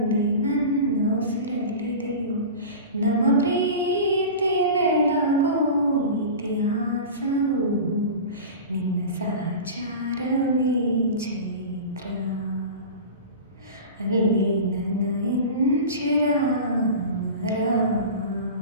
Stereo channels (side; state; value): both; inverted; correlation -0.32